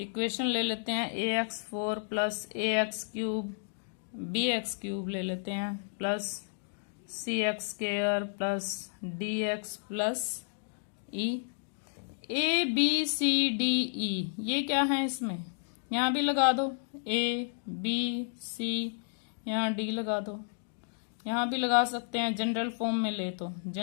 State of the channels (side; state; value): right; silent; digital silence